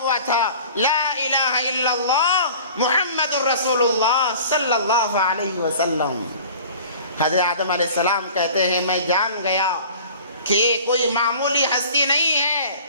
تھا لا الہ الا اللہ محمد الرسول اللہ صلی اللہ علیہ وسلم. حضرت آدم علیہ السلام کہتے ہیں میں جان گیا کہ یہ کوئی معمولی ہستی نہیں ہے،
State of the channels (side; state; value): both; inverted; correlation -0.44